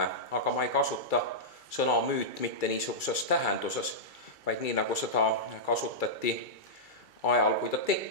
aga ma ei kasuta sõna müüt mitte niisuguses tähenduses, vaid nii, nagu seda kasutati ajal, kui ta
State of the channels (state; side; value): late; right; 2.3 ms